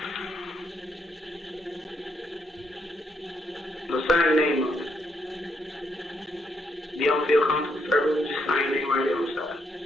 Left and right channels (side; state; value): both; normal; correlation 0.76